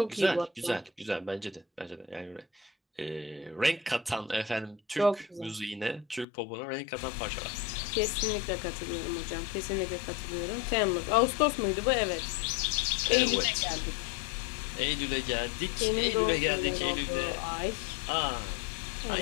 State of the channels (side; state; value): right; drops out; at 6.2 s